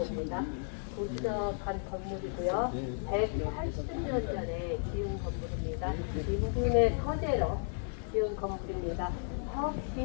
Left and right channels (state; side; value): silent; right; 55 dB below the other